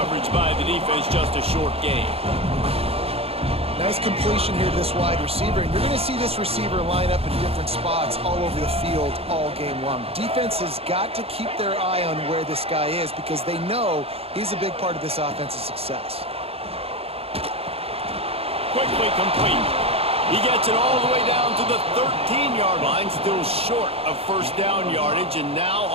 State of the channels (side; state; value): left; late; 0.29 ms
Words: by the defense, just a short gain. Nice completion here to this wide receiver, and you're going to see this receiver line up in different spots all over the field all game long. Defense has got to keep their eye on where this guy is because they know he's a big part of this offense's success. Quickly complete. He gets it all the way down to the 13-yard line, still short of first down yardage, and now